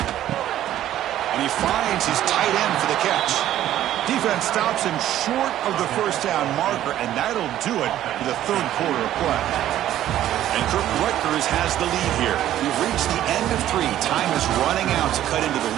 And he finds his tight end for the catch. Defense stops him short of the first down marker, and that'll do it for the 3rd quarter of play. And Rutgers has the lead here. We've reached the end of 3. Time is running out to cut into the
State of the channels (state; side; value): quieter; left; 12.5 dB